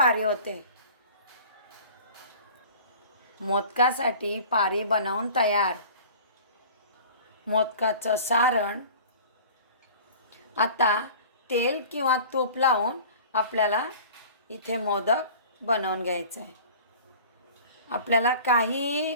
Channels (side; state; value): both; inverted; correlation -0.43